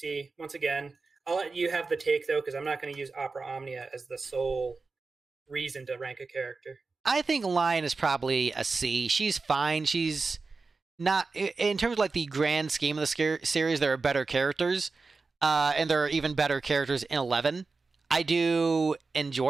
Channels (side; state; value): left; quieter; 4.1 dB